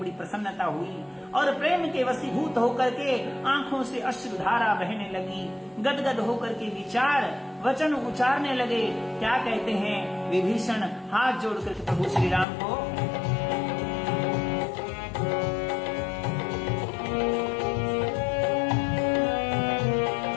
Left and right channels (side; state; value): right; drops out; at 12.5 s